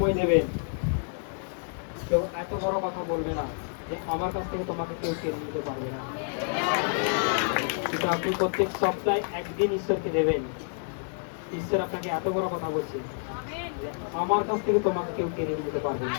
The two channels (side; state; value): right; silent; 59 dB below the other